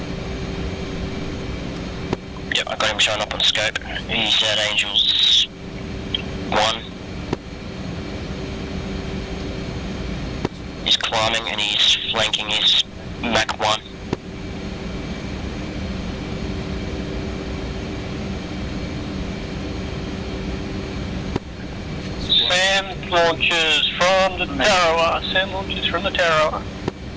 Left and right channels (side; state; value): both; identical; correlation 1.00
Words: Yep, I got him showing up on scope. He's at Angels 1. He's climbing and he's flanking his Mach 1. Sam launches from the Tarawa. Sam launches from the Tarawa.